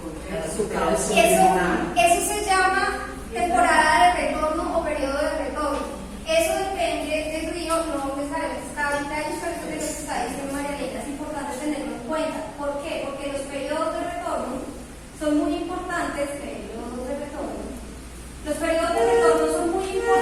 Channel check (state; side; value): identical; both; correlation 1.00